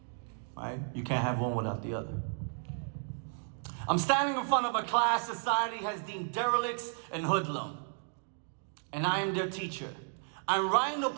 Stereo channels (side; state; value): left; silent; 55 dB below the other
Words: Right? You can't have one without the other. I'm standing in front of a class society has deemed derelicts and hoodlum. And I am their teacher. I'm writing a